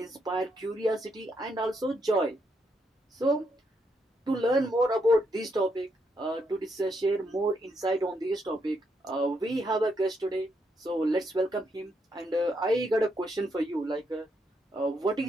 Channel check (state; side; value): normal; both; correlation 0.78